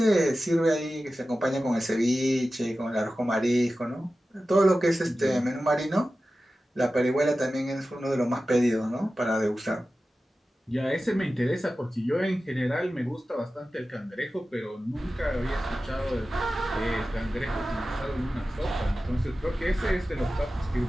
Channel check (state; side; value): normal; both; correlation 0.94